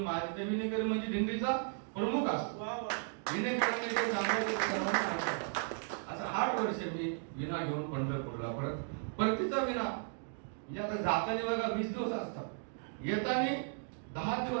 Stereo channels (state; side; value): silent; left; 54 dB below the other